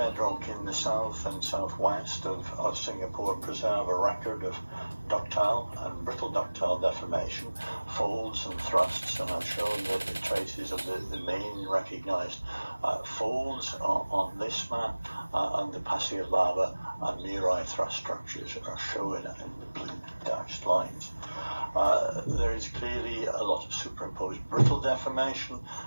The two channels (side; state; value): both; inverted; correlation -1.00